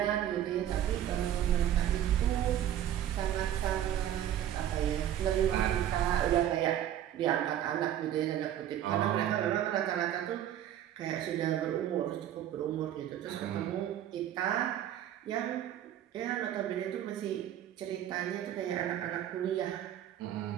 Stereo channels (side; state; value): left; quieter; 11.2 dB